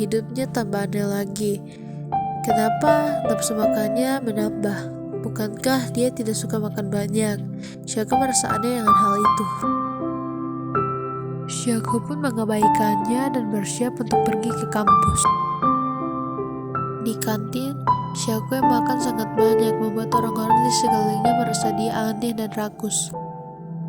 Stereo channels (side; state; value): both; identical; correlation 1.00